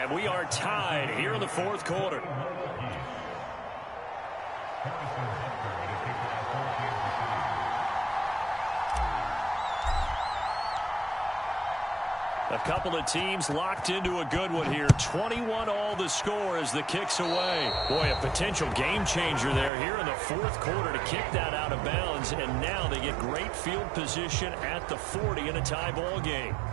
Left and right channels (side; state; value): left; drops out; at 19.7 s